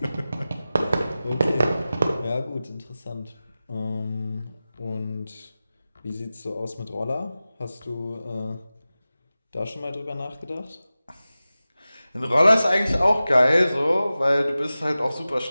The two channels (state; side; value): inverted; both; correlation -0.96